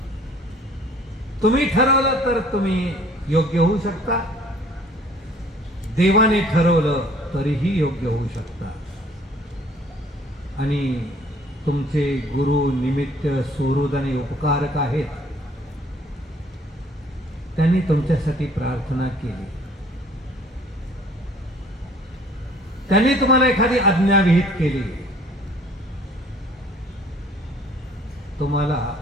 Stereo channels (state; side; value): normal; both; correlation 0.55